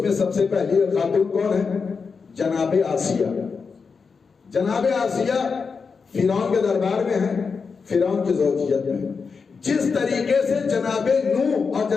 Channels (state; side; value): quieter; right; 5.2 dB